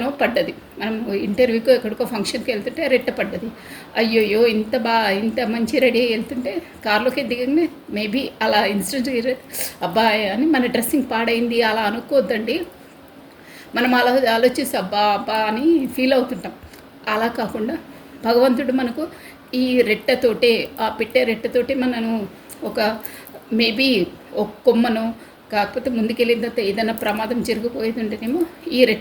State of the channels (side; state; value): both; identical; correlation 1.00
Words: పడ్డది. మనం ఇంటర్వ్యూకో ఎక్కడికో ఫంక్షన్కి వెళ్తుంటే రెట్ట పడ్డది. అయ్యోయ్యో ఇంత మంచి రెడీ అయ్యి వెళ్తుంటే కార్లోకి దిగంగానే మేబీ అలా ఇన్సిడెంట్ అబ్బాయి అని మన డ్రెస్సింగ్ పాడైంది అలా అనుకోవద్దండి. మనం అలా ఆలోచిస్తే అబ్బా అని ఫీల్ అవుతుంటాం. అలా కాకుండా భగవంతుడు మనకు ఈ రెట్టతోటే, ఆ రెట్టతోటే మనను ఒక మేబీ ఒక కొమ్మను, కాకపోతే ముందుకెళ్ళిన తర్వాత ఏదైనా ప్రమాదం జరిగిపోయేది ఉంటేనేమో ఈ